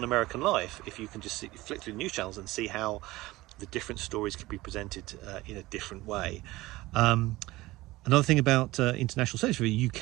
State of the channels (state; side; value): quieter; left; 19.0 dB